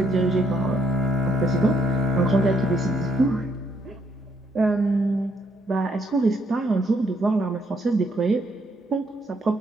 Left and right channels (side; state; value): both; normal; correlation 0.73